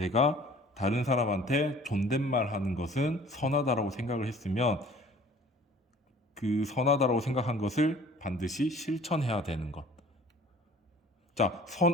다른 사람한테 존댓말 하는 것은 선하다라고 생각을 했으면 그 선하다라고 생각한 것을 반드시 실천해야 되는 것. 자,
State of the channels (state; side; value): normal; both; correlation 0.50